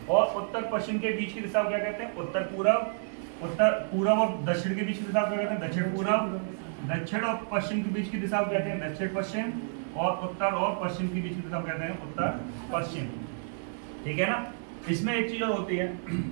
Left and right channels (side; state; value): left; silent; digital silence